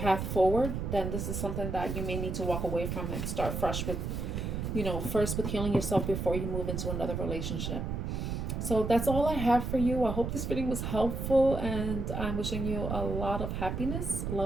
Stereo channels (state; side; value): noise; right; rumble, 3 dB below the sound